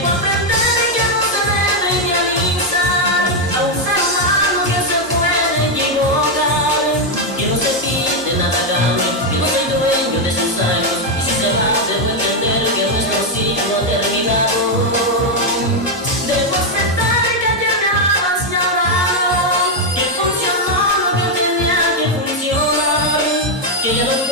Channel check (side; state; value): both; normal; correlation 0.02